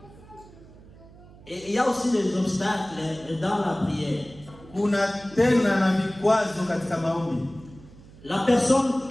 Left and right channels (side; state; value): right; noise; hum, 21 dB below the sound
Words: Et il y a aussi des obstacles dans la prière. La personne